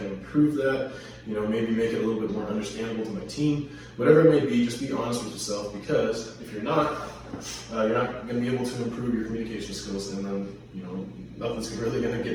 improve that? Maybe make it a little bit more understandable to my team. Whatever it may be, just be honest with yourself, because if you're not going to be able to improve your communication skills, and then, nothing's really going to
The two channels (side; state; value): both; identical; correlation 1.00